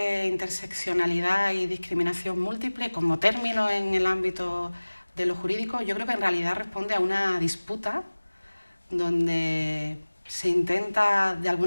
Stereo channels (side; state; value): both; inverted; correlation -1.00